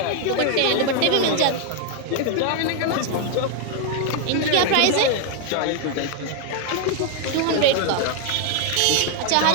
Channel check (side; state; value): both; different; correlation 0.01